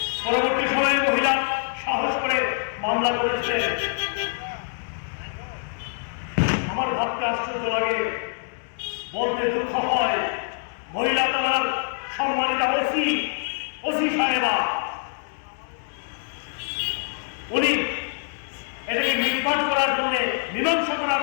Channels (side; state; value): right; silent; 62 dB below the other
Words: পরবর্তী সময়ে মহিলা সাহস করে মামলা করেছিলেন। আমার ভাবতে আশ্চর্য লাগে, বলতে দুঃখ হয়, মহিলা তার সম্মানিত ওসি সাহেবা উনি এটাকে নির্বাচ করার জন্য মীমাংসা করার